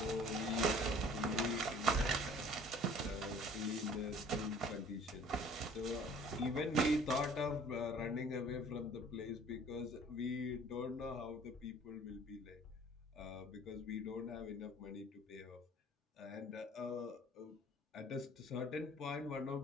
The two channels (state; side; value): normal; both; correlation 0.51